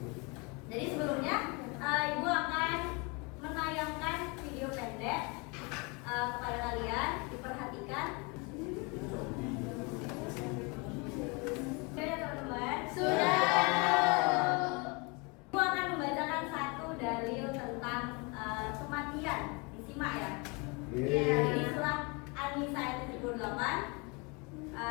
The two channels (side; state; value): right; quieter; 29.9 dB